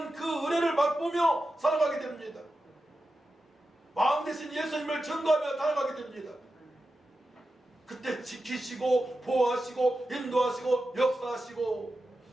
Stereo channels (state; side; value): normal; both; correlation 0.91